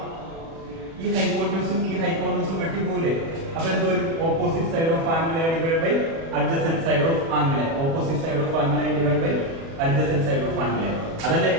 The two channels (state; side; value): late; left; 36 ms